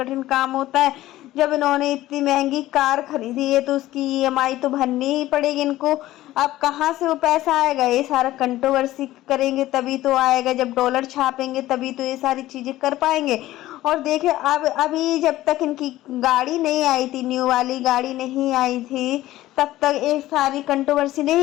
काम होता है। जब इन्होंने इतनी महंगी कार खरीदी है तो उसकी ईएमआई तो भरनी ही पड़ेगी इनको। अब कहाँ से वो पैसा आएगा, ये सारा कंट्रोवर्सी करेंगे तभी तो आएगा। जब डॉलर छापेंगे तभी तो ये सारी चीज़ें कर पाएंगे। और देखिए अब अभी जब तक इनकी गाड़ी नहीं आई थी, न्यू वाली गाड़ी नहीं आई थी, तब तक ये सारी कंट्रोवर्सी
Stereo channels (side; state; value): right; quieter; 15.6 dB